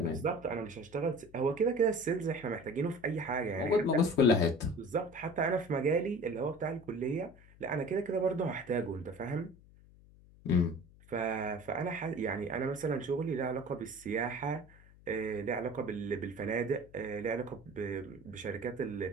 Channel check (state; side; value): noise; left; hum, 23 dB below the sound